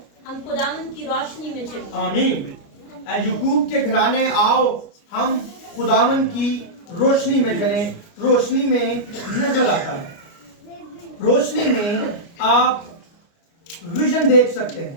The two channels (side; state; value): right; late; 29 ms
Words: हम खुदावन की रोशनी में चलें। आमीन। ऐ याकूब के घराने आओ, हम खुदावन की रोशनी में चलें। रोशनी में नजर आता है, रोशनी में आप विजन देख सकते